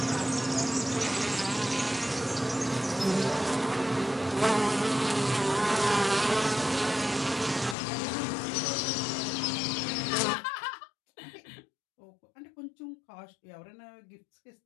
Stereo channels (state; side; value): drops out; right; at 7.8 s